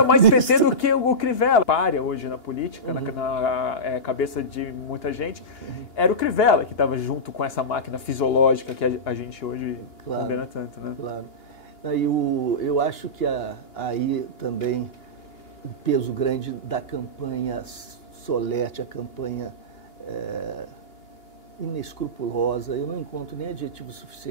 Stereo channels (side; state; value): right; late; 2.8 ms